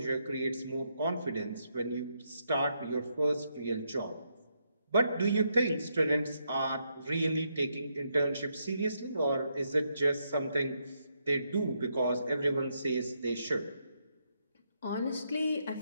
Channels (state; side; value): inverted; both; correlation -0.79